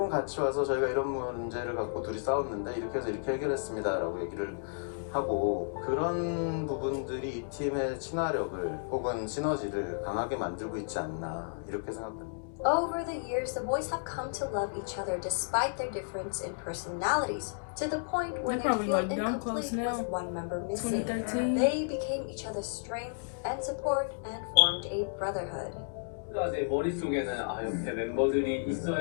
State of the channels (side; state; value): right; silent; digital silence